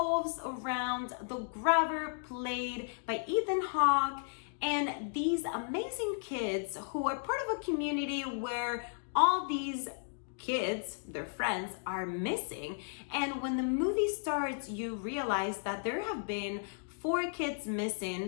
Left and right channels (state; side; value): silent; right; digital silence